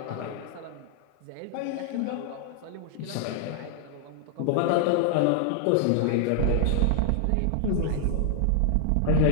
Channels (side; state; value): both; different; correlation 0.00